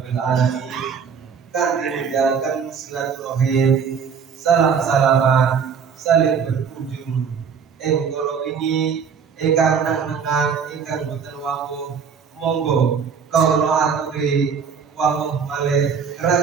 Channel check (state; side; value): quieter; left; 6.5 dB